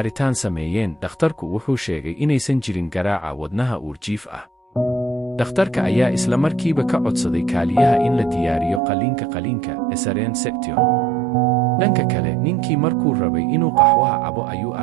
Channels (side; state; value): left; drops out; at 8.8 s